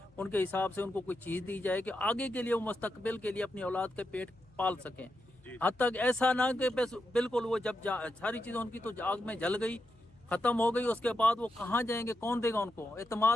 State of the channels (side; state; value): left; noise; hum, 30 dB below the sound